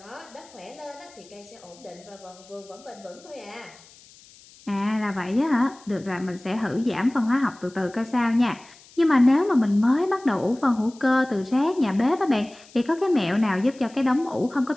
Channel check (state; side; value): noise; left; hiss, 24 dB below the sound